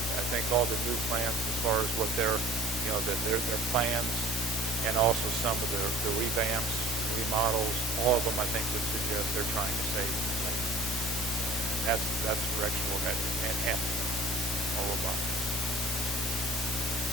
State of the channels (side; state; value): both; normal; correlation 0.47